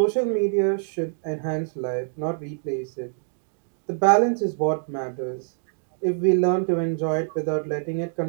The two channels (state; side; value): silent; left; digital silence